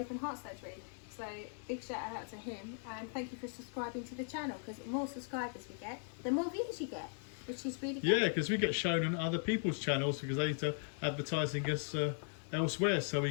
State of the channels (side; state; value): right; silent; 52 dB below the other